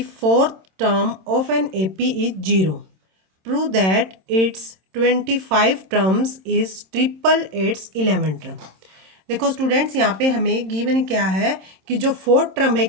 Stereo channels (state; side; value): late; left; 26 ms